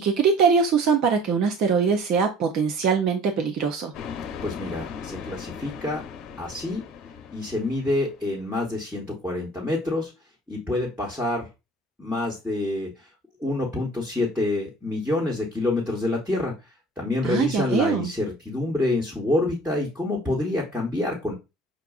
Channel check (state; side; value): normal; both; correlation 0.50